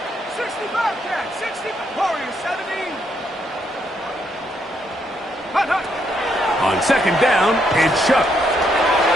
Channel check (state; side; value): normal; both; correlation 0.75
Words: 60 Bobcat, 60 Warrior 70. Hunt, hunt. On second down, it's Shuck.